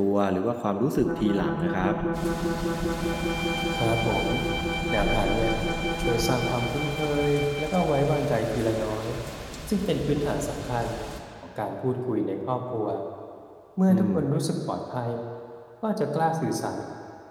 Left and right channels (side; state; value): both; identical; correlation 1.00